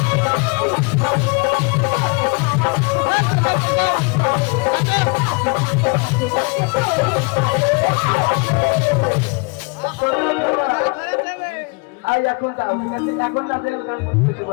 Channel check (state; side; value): quieter; right; 29.9 dB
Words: এখন যাও, ঠিক আছে? এখন তাদের